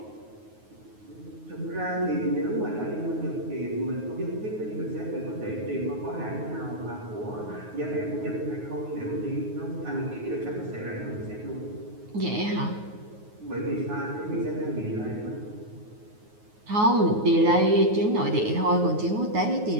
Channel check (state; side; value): late; left; 9.4 ms